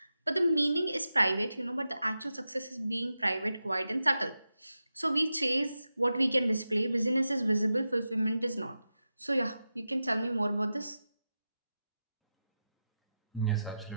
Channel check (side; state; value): both; inverted; correlation -0.91